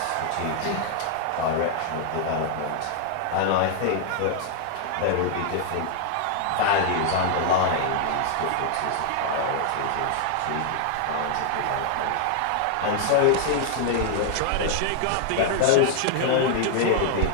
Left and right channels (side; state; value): both; different; correlation 0.00